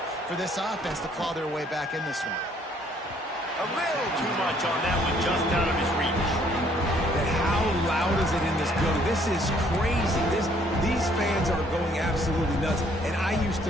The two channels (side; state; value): both; normal; correlation 0.63